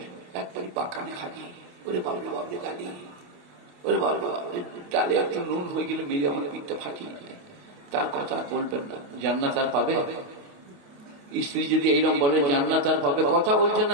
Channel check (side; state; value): left; late; 28 ms